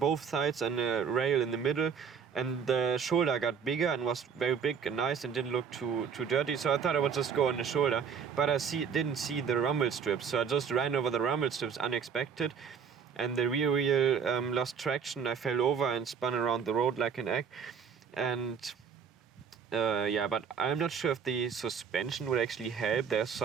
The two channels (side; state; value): left; quieter; 6.8 dB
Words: sides and a rail in the middle. And the shoulder got bigger and was very big and nice and didn't look too dirty. So I thought I would just go on the shoulder. But I didn't see the rumble strips. So I just ran over the rumble strips unexpected. And the rear wheel lost traction. I fell over and spun around the road like an egg. And yeah, but I'm not sure if the suspension would actually help. There's